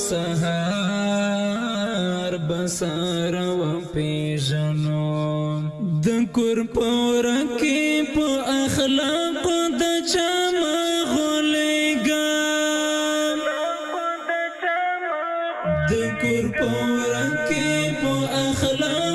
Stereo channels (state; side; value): identical; both; correlation 1.00